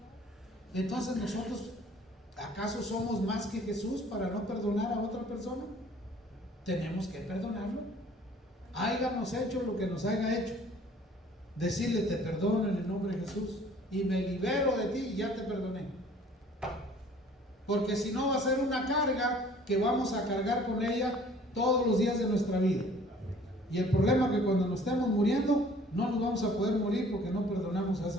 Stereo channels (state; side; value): normal; both; correlation 0.53